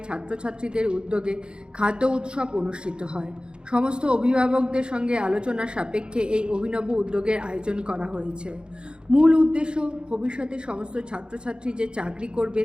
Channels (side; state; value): left; late; 0.051 ms